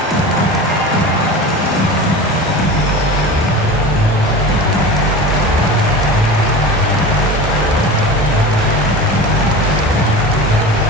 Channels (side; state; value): both; normal; correlation 0.32